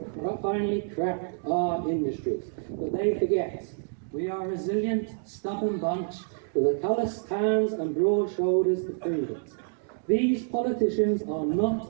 finally crack our industries. But they forget we are a resilient, stubborn bunch with a calloused hands and broad shoulders to prove it. These politicians are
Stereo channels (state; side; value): silent; left; digital silence